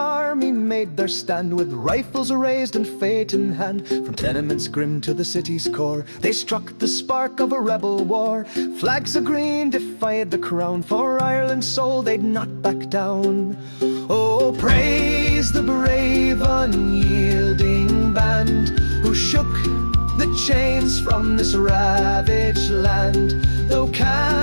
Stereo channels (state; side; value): inverted; both; correlation -1.00